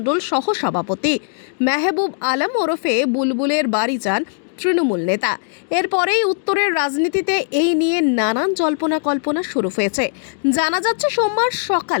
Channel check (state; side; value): silent; right; digital silence